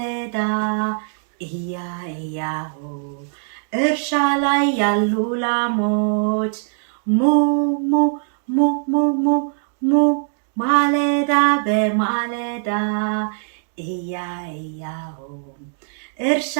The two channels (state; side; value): silent; left; 65 dB below the other